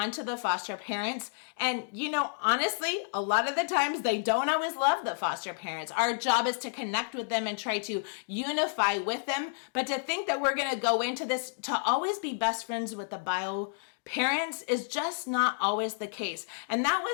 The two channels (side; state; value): right; silent; digital silence